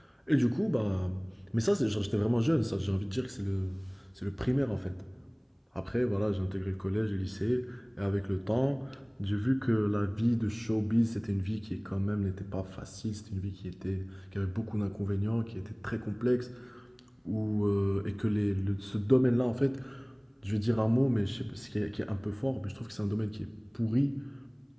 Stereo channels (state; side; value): identical; both; correlation 1.00